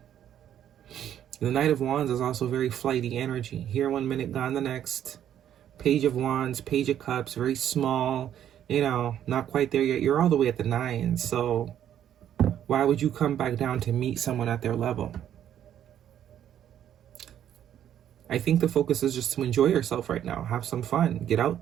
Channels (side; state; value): left; quieter; 10.4 dB